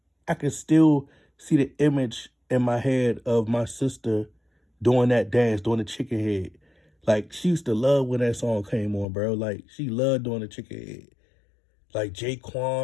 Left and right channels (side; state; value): right; drops out; at 9.1 s